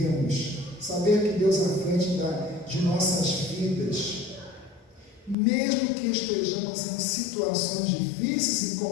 saber que Deus é à frente de nossas vidas, mesmo que estejamos em situações difíceis e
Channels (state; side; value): drops out; right; at 5.4 s